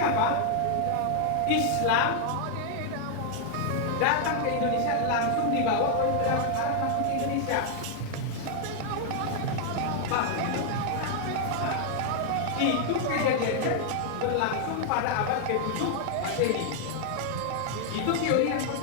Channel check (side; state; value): both; different; correlation 0.00